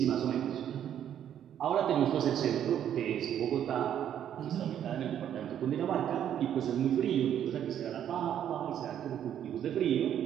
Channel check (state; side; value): quieter; left; 10.0 dB